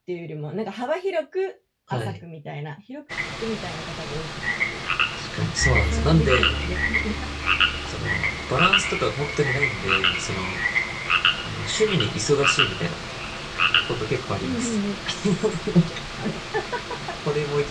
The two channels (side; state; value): both; identical; correlation 1.00